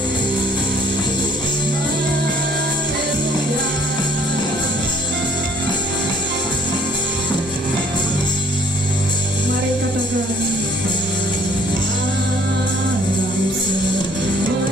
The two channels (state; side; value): normal; both; correlation 0.59